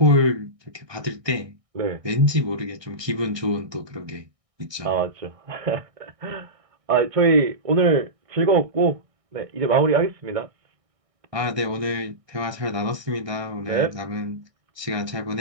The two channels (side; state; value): left; late; 1.6 ms